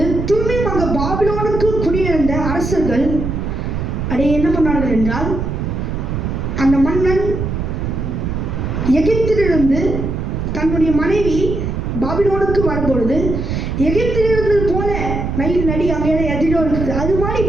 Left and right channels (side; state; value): right; noise; rumble, 3 dB below the sound